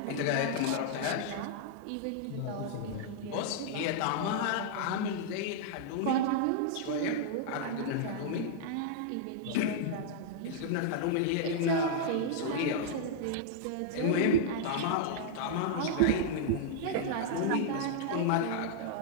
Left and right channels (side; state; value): both; different; correlation -0.01